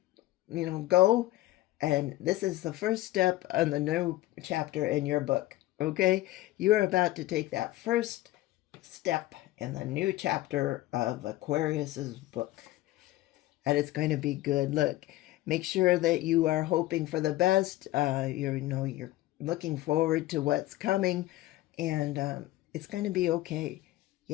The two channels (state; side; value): quieter; right; 16.6 dB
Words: go. And this is the first step on the new chapter in your book. Okay. You are about to take that first step in the new chapter of Aquarius's book. And it's going to be good. Look, make sure that you are hoping for the best. You're looking forward to what's coming, and it's going to be okay.